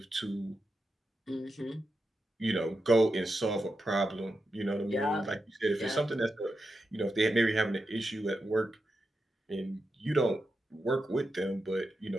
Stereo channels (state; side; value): normal; both; correlation 0.88